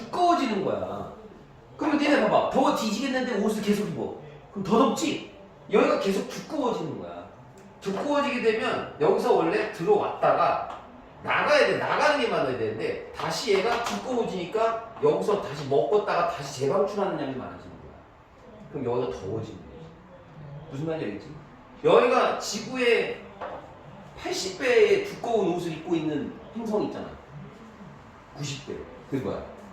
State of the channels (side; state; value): both; identical; correlation 1.00